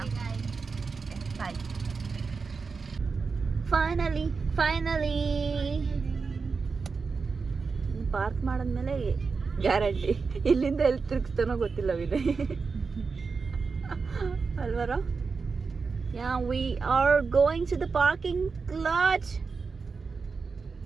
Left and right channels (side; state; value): left; quieter; 4.8 dB